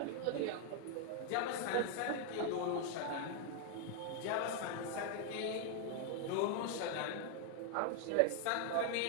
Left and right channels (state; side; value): different; both; correlation 0.00